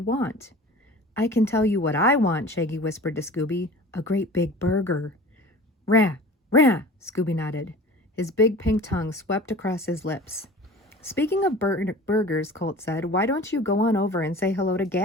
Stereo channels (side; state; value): both; normal; correlation 0.41